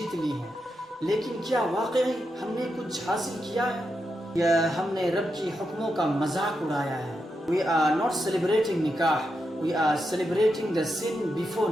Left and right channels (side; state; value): both; normal; correlation 0.86